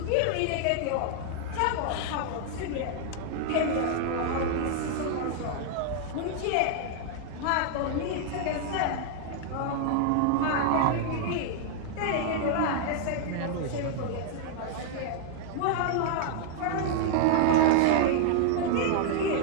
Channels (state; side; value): different; both; correlation 0.00